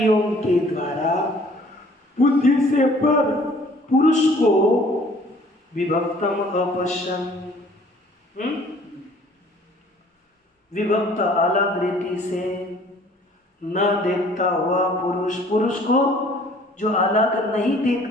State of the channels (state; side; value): normal; both; correlation 0.55